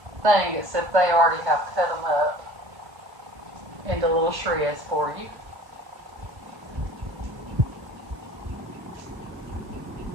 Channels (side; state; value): left; late; 1.7 ms